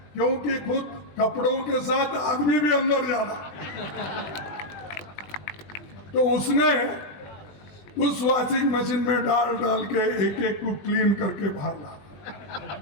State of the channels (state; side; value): late; right; 20 ms